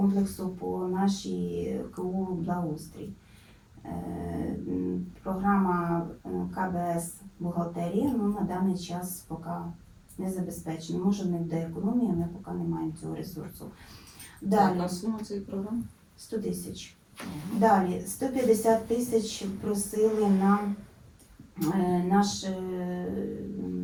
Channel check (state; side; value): identical; both; correlation 1.00